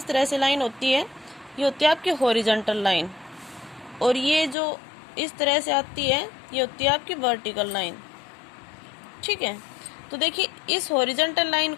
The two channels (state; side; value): drops out; right; at 4.5 s